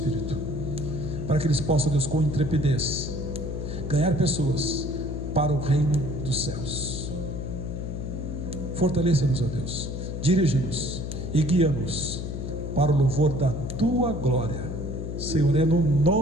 para que eles possam, Deus, com intrepidez, ganhar pessoas para o reino dos céus. Fortaleça-nos, ó Deus, dirige-nos e guia-nos para o louvor da tua glória, Senhor. É no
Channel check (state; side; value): noise; left; hum, 5 dB below the sound